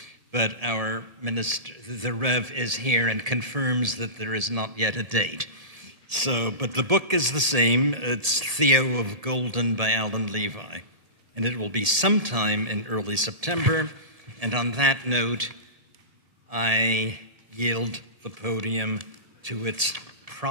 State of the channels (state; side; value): late; left; 1.7 ms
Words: but our minister, the Rev, is here and confirms that there is not yet a date. So, but the book is the same. It's Theo of Golden by Alan Levi, and it will be sometime in early September. And on that note, I yield the podium to its